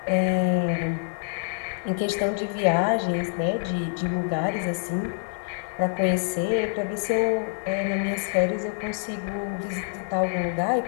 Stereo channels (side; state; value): right; silent; digital silence